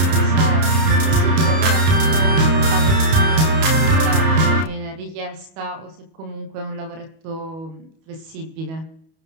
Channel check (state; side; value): late; left; 31 ms